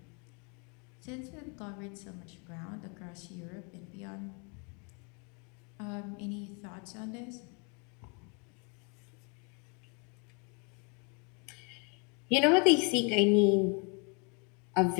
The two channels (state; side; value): quieter; right; 33.6 dB